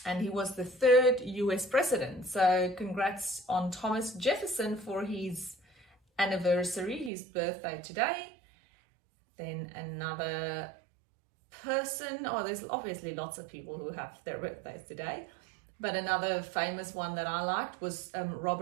And he was the third US president. So congrats on Thomas Jefferson for his anniversary, his birthday today. Then another person, there's obviously lots of people who have their birthdays today, but another famous one that I liked was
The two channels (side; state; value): left; drops out; at 7.1 s